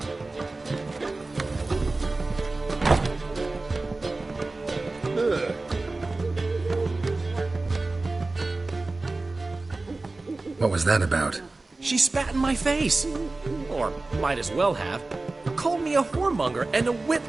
What was that about? She spat in my face. Or might as well have. Called me a whoremonger and a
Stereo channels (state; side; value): quieter; left; 3.3 dB